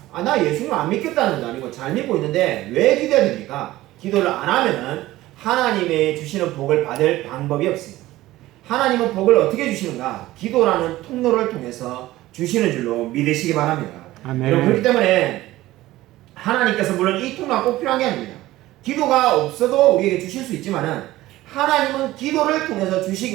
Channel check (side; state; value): left; quieter; 16.6 dB